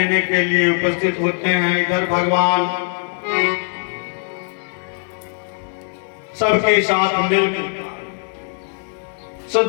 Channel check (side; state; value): right; silent; digital silence